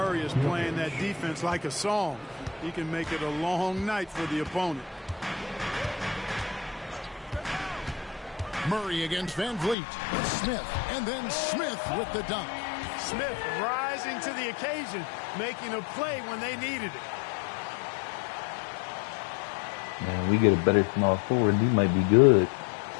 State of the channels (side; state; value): right; drops out; at 9.8 s